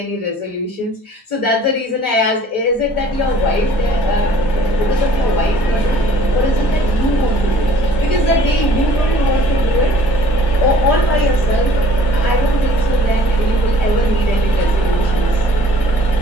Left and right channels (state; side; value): normal; both; correlation 0.54